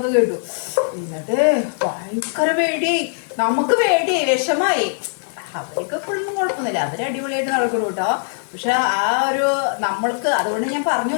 കേട്ടു. എന്നിട്ട് ഭയങ്കര പേടിയായി. നമുക്ക് പേടിയായി, വിഷമായി. അവർക്ക് എപ്പോഴൊന്നും കുഴപ്പമൊന്നുമില്ല, അവർ അടിപൊളിയായിട്ട് നടക്കണം കേട്ടോ. പക്ഷെ ആ ഒരു നമ്മൾക്ക്, അതുകൊണ്ട് ഞാൻ പറഞ്ഞു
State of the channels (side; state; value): right; silent; digital silence